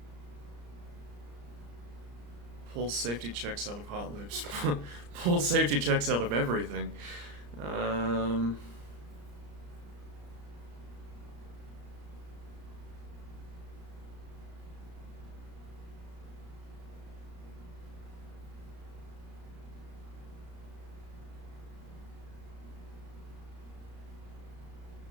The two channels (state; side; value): late; left; 34 ms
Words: Pull safety checks out of hot loops. Pull safety checks out of everything.